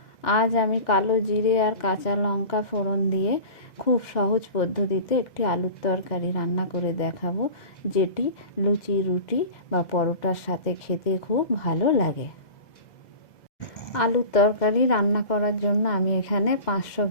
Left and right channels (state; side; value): late; right; 2.0 ms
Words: আজ আমি কালো জিরে আর কাঁচা লঙ্কা ফোড়ন দিয়ে খুব সহজ পদ্ধতিতে একটি আলুর তরকারি রান্না করে দেখাবো, যেটি লুচি, রুটি বা পরোটার সাথে খেতে খুব ভালো লাগে। আলুর তরকারি রান্না করার জন্য আমি এখানে 500